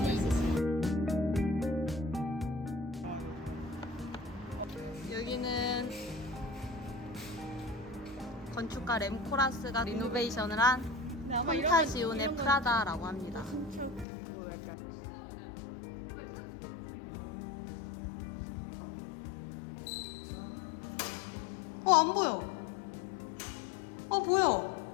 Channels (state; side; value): drops out; right; at 14.1 s